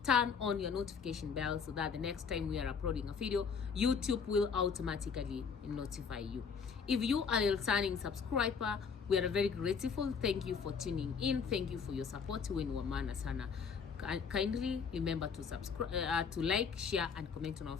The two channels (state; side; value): quieter; right; 6.0 dB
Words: Turn on your notification bell so that the next time we are uploading a video, YouTube will automatically notify you. If you are a returning subscriber, we are very grateful. Thank you for tuning in. Thank you for your support. Sana. Kindly remember to subscribe, to like, share, and comment on our